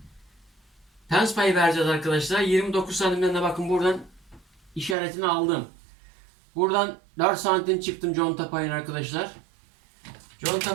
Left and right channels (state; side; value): drops out; left; at 5.0 s